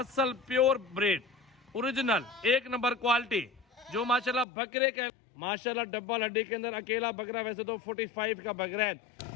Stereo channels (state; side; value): drops out; right; at 4.5 s